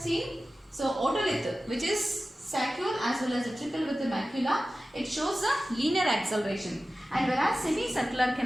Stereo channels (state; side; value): normal; both; correlation 0.95